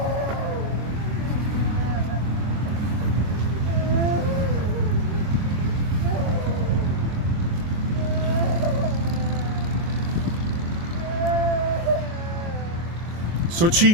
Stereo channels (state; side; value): late; left; 24 ms